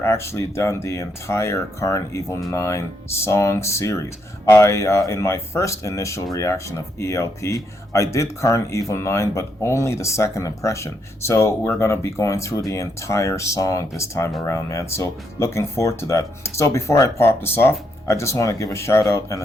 actually done the entire Karn Evil 9 song series. In my first initial reaction of ELP, I did Karn Evil 9, but only the second impression. So we're going to be going through the entire song this time around, man. So looking forward to that. So before I pop this off, I just want to give a shout out and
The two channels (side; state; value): both; normal; correlation 0.77